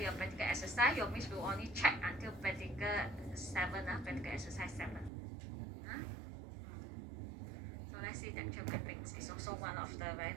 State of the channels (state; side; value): drops out; left; at 5.1 s